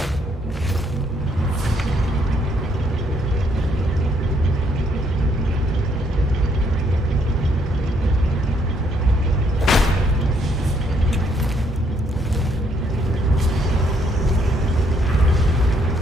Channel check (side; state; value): both; normal; correlation 0.70